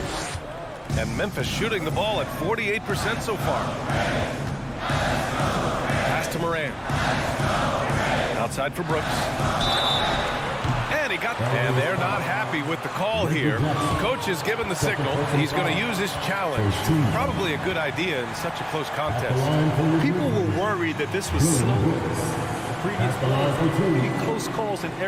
And Memphis shooting the ball at 48% so far. Pass to Moran. Outside for Brooks. And he got, and they're not happy with the call here. Coach has given the signal. He's going to use his challenge. Probably a good idea in such a close contest. People were worried that this was slow. Previous close calls in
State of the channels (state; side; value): identical; both; correlation 1.00